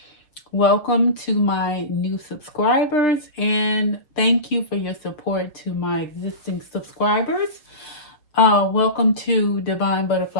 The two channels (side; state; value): right; late; 6.5 ms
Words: Welcome to my new subscribers, and thank you for your support to my existing subscribers. Welcome to Divine